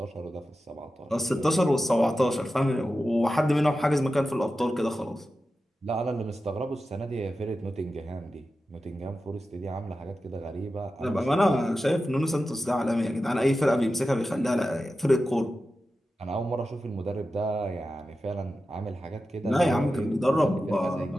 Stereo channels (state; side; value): normal; both; correlation 0.92